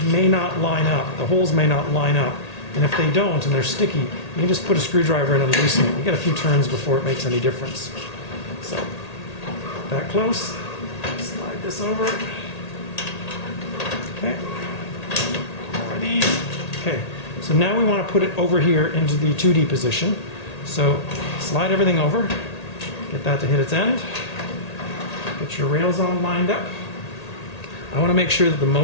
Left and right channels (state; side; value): late; right; 1.8 ms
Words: may not line up. The holes may not line up. And if they don't and they're sticky, you can just put a screwdriver in and loosen it. You get a few turns before it makes any difference. So that close. Slide this over. Okay. More of these. Okay. So now we want to put it over here into the 2D position. So slide everything over. Get that to hit its end. Get your rails all lined up. I want to make sure that the